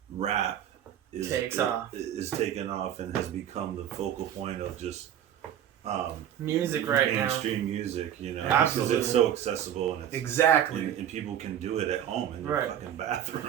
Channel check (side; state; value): left; quieter; 10.4 dB